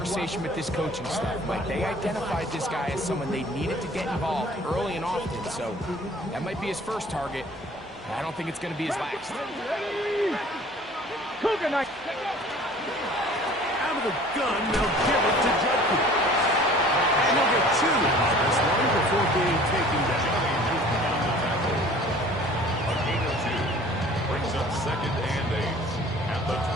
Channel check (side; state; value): both; normal; correlation 0.49